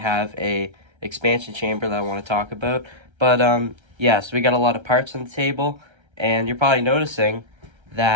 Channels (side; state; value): left; late; 1.3 ms